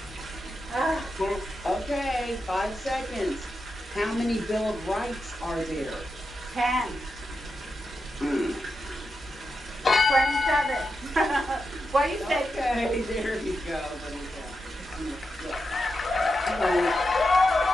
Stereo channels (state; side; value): noise; left; hum, 28 dB below the sound